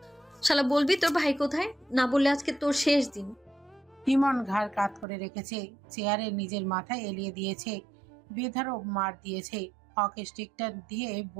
শালা বলবি তোর ভাই কোথায়? না বললে আজকে তোর শেষ দিন। ইমন ঘাড় কাত করে রেখেছে, চেয়ারে নিজের মাথায় এলিয়ে দিয়েছে, বেধারক মার দিয়েছে। হকি স্টিকটা দিয়ে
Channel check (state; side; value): drops out; left; at 5.1 s